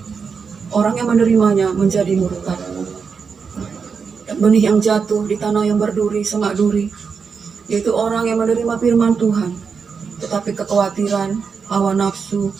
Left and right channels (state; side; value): quieter; left; 5.7 dB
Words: orang yang menerimanya menjadi murtad. Benih yang jatuh di tanah yang berduri, semak duri, yaitu orang yang menerima firman Tuhan, tetapi kekhawatiran, hawa nafsu,